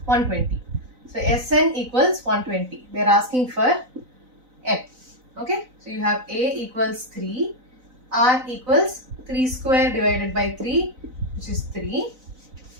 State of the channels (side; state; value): left; late; 4.0 ms